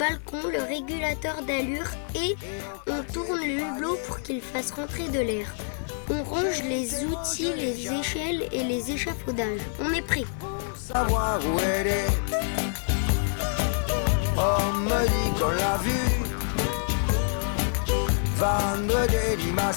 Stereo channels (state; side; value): silent; right; 60 dB below the other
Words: le régulateur d'allure et on tourne le hublot pour qu'il fasse rentrer de l'air. On range les outils, les échelles et les échafaudages. On est prêt. Savoir où elle est. On me dit qu'on l'a vue vendre des